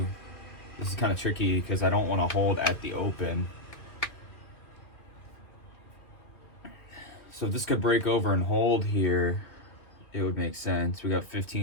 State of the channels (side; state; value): right; late; 2.3 ms